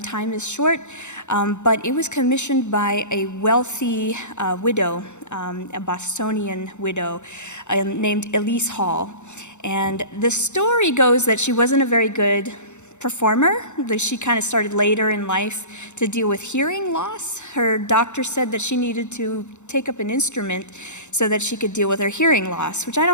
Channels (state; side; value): late; right; 0.83 ms